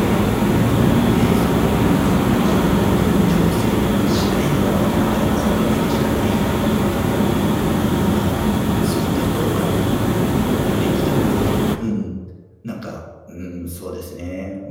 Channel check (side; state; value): both; identical; correlation 1.00